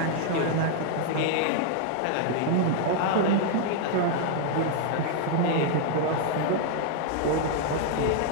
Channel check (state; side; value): different; both; correlation 0.00